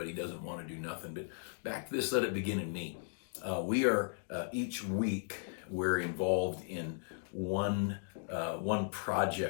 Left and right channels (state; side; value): silent; right; digital silence